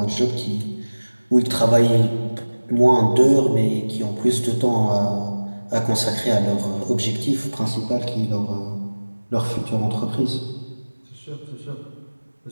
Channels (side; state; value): both; inverted; correlation -1.00